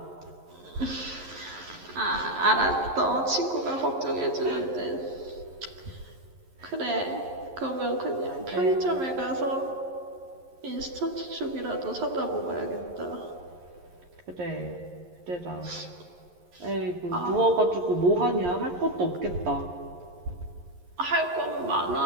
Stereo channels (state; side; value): late; left; 11 ms